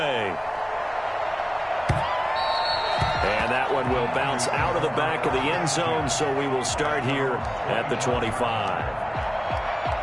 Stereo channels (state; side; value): identical; both; correlation 1.00